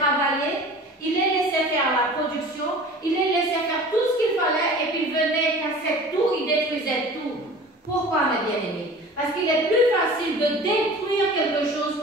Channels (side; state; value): both; normal; correlation 0.41